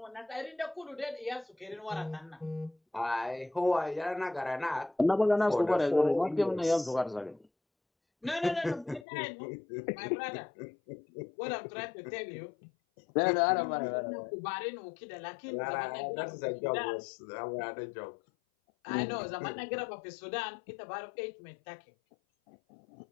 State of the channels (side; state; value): right; drops out; at 9.1 s